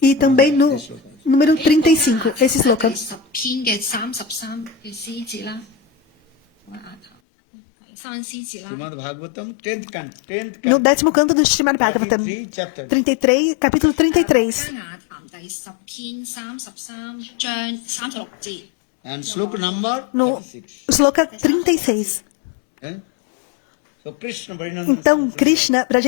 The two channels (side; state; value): right; drops out; at 7.1 s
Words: e também no número 35, esse sloka. 10篇嘅33嘅詩節啦。我額頭係三詩節啦。 Srimad Bhagavatam, 10th canto. 10th No canto. 10º canto do Srimad Bhagavatam, 33 chapter. 33, capítulo 33. 雅談第10篇33章36節。 And sloka number No 36. sloka 36. So Krishna Varinanda Então Krishna,